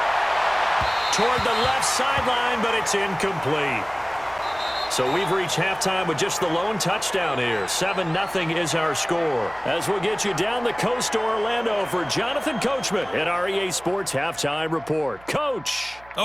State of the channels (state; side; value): noise; right; hum, 24 dB below the sound